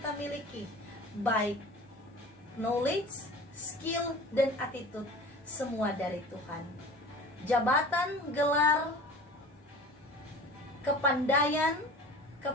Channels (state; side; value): normal; both; correlation 0.40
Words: miliki, baik knowledge, skill, dan attitude, semua dari Tuhan. Jabatan, gelar, kepandaian,